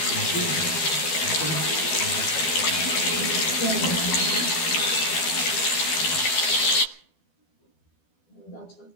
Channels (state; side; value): late; right; 12 ms